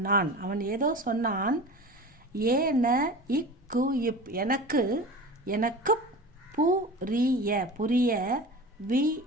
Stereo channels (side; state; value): both; normal; correlation 0.34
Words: அவன் ஏதோ சொன்னான். எனக்கு